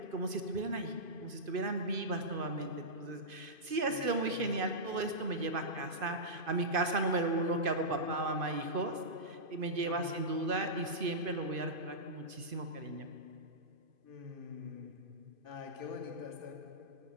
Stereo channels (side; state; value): left; late; 2.5 ms